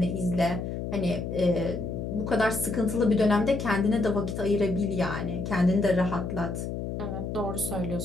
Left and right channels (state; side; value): noise; left; hum, 5 dB below the sound